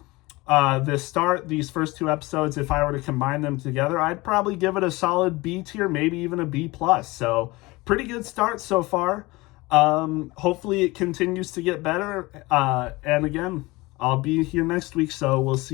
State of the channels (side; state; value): right; quieter; 22.1 dB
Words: first 2 episodes, if I were to combine them together, I'd probably give it a solid B tier, maybe even a B+. So pretty good start so far. Hopefully it continues to get better. And again, I'll be here next week, so we'll